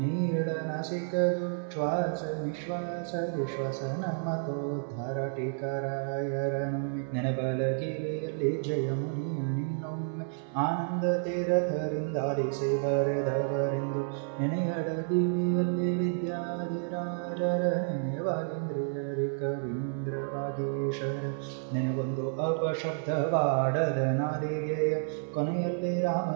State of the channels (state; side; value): silent; left; digital silence